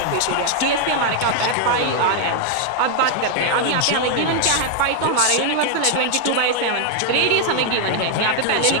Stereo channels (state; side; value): different; both; correlation 0.00